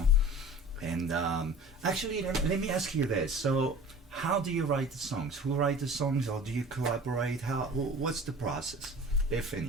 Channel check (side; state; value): both; normal; correlation 0.41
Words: And actually, let me ask you this. So, how do you write the songs? Who write the songs, or do you collaborate? What's the process, if